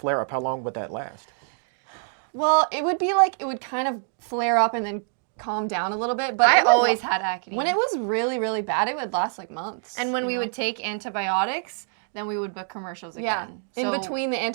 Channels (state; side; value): silent; left; digital silence